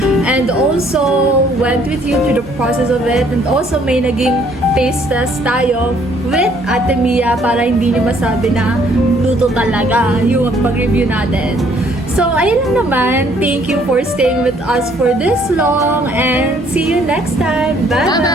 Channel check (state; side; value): normal; both; correlation 0.63